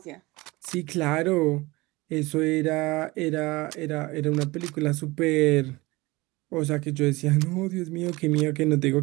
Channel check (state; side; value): quieter; left; 21.9 dB